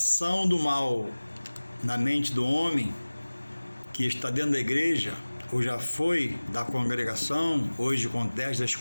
do mal na mente do homem, que está dentro da igreja, ou já foi da congregação, hoje acontece das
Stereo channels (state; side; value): inverted; both; correlation -1.00